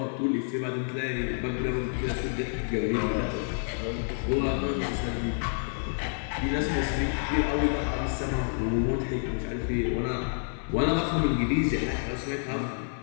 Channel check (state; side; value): silent; right; digital silence